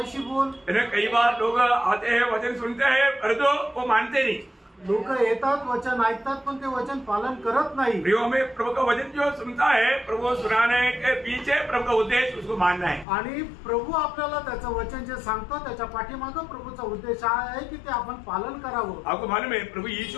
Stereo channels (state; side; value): drops out; right; at 13.1 s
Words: बोल। कई बार लोग आते हैं वचन सुनते हैं परंतु वो मानते नहीं। लोक येतात वचन ऐकतात पण ते वचन पालन करत नाही। में प्रभु का वचन जो सुनता है प्रभु सुनाने के पीछे प्रभु का उद्देश्य उसको मानना है आणि प्रभु आपल्याला त्याचं वचन जे सांगतो त्याच्या पाठीमागं प्रभुचा उद्देश आहे की ते आपण पालन करावं। आपको मालूम है प्रभु